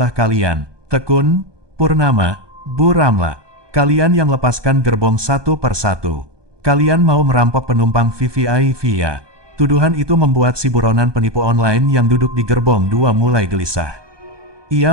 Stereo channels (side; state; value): left; late; 1.2 ms